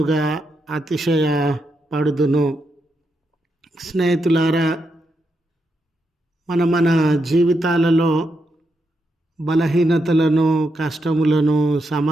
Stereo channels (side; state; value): both; normal; correlation 0.83